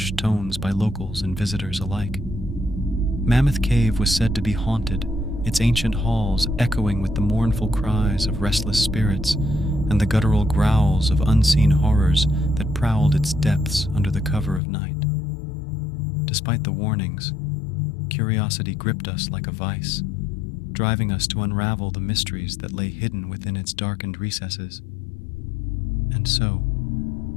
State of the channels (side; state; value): right; drops out; at 14.6 s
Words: tones by locals and visitors alike. Mammoth Cave was said to be haunted, its ancient halls echoing with the mournful cries of restless spirits and the guttural growls of unseen horrors that prowled its depths under the cover of night. Despite the warnings, curiosity gripped us like a vice, driving us to unravel the mysteries that lay hidden within its darkened recesses. And so,